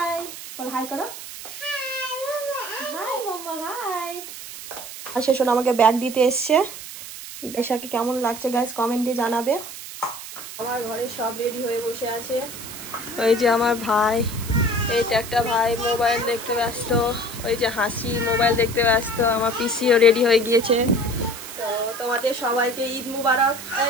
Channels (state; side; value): noise; right; hiss, 12 dB below the sound